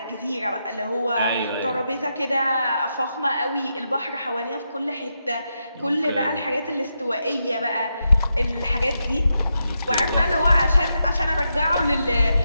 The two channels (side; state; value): both; inverted; correlation -0.84